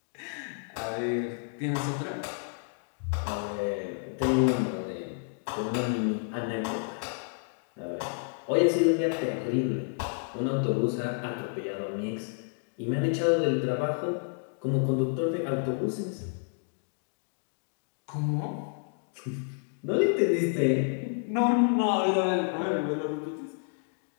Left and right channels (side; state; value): right; silent; 58 dB below the other